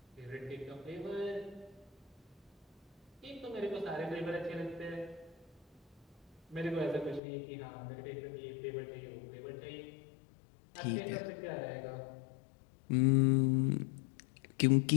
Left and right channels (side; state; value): right; drops out; at 7.2 s